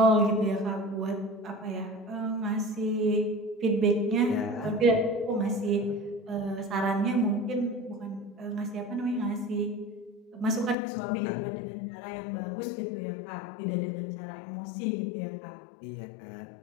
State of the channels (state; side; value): drops out; right; at 10.8 s